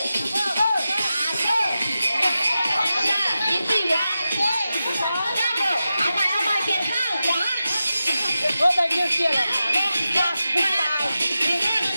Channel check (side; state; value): both; inverted; correlation -0.92